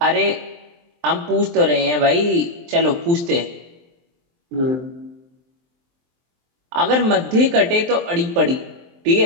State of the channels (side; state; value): left; late; 23 ms